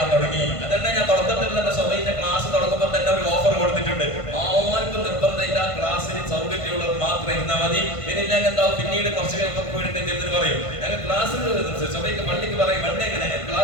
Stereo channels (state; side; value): late; right; 1.5 ms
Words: തുടങ്ങി. അതന്നെ ഞാൻ തുടക്കത്തിൽ തന്നെ സ്വബൈന്റെ ക്ലാസ് തുടങ്ങുമ്പോൾ തന്നെ ഒരു ഓഫർ കൊടുത്തിട്ടുണ്ട്. ആർക്കും നിർബന്ധമില്ല, ക്ലാസ്സിന് സൗകര്യമുള്ളവർ മാത്രം ഇരുന്നാൽ മതി. ഇനിയില്ലെങ്കിൽ എന്താവും, പിന്നീട് കുറച്ച് കഴിയുമ്പോൾ വീടിന്റെ പറയും ഞങ്ങൾ ക്ലാസ് സ്വബൈക്ക് പള്ളിക്ക് പറയും വണ്ടി എങ്ങനെ